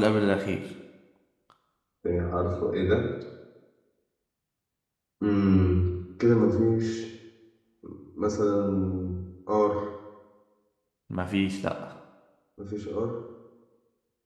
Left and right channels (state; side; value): identical; both; correlation 1.00